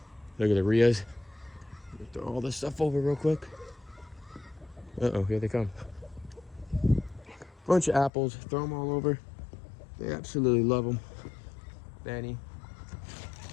Look at the Rias. Throw all this stuff over real quick. Uh-oh, here they come. Bunch of apples, throw them all over. They absolutely love them. Danny.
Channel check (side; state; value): right; drops out; at 8.1 s